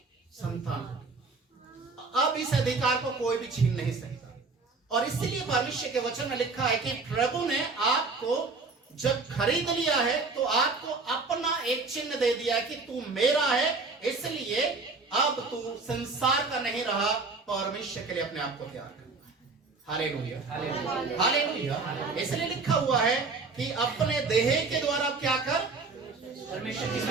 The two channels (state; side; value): quieter; left; 3.9 dB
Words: संतान हो। अब इस अधिकार को कोई भी छीन नहीं सकता। और इसलिए परमेश्वर के वचन में लिखा है कि प्रभु ने आपको जब खरीद लिया है तो आपको अपना एक चिन्ह दे दिया है कि तू मेरा है, इसलिए अब तू संसार का नहीं रहा, परमेश्वर के लिए अपने आप को तैयार करना। Hallelujah, hallelujah. इसलिए लिखा हुआ है कि अपने देह के द्वारा क्या कर, परमेश्वर की